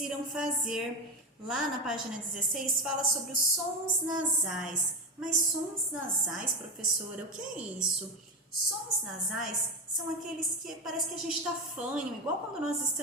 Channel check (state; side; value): normal; both; correlation 0.19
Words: fazer. Lá na página 16 fala sobre os sons nasais. Mas sons nasais, professora, o que é isso? Sons nasais são aqueles que parece que a gente está fanho, igual quando nós